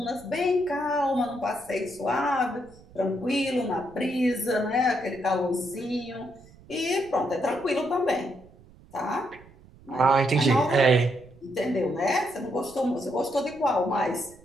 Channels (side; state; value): right; noise; rumble, 24 dB below the sound